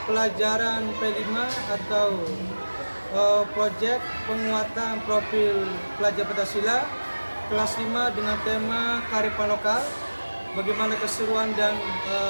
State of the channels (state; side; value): inverted; both; correlation -1.00